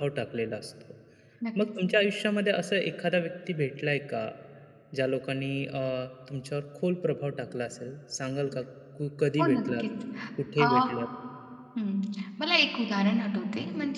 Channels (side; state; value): both; identical; correlation 1.00